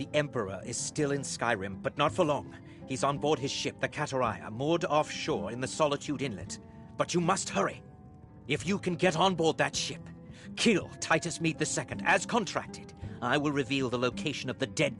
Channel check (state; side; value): identical; both; correlation 1.00